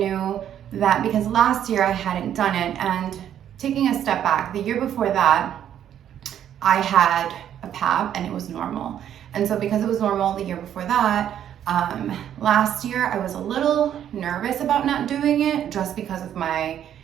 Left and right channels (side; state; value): left; quieter; 10.1 dB